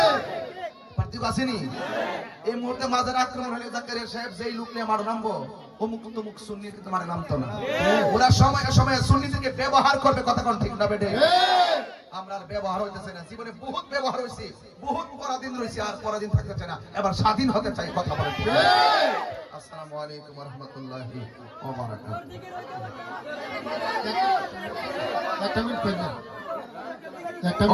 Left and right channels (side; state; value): both; identical; correlation 1.00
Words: পার্থক্য আসেনি? এই মুহূর্তে মাজার আক্রমণ হলে জাকারিয়া সাহেব যেই লোক নিয়ে মার নামবো, অমুক তমুক সুন্নি কিন্তু মারে নামতো না। ওরা সময়ে সময়ে সুন্নিদেরকে ব্যবহার করবে, কথা কোন ঠিক না বেটে? আমরা আর ব্যবহার হইতেছে না, জীবনে বহুত ব্যবহার হয়েছে, বহুত পরাধীন রয়েছে, আর পরাধীন থাকতে চাই না, এবার স্বাধীন হতে চাই, কথা বলে। আসসালামু আলাইকুম ওয়া রাহমাতুল্লাহি ওয়া বারাকাতুহু।